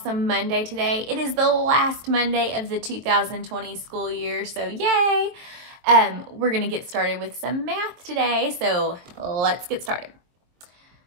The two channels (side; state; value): left; late; 22 ms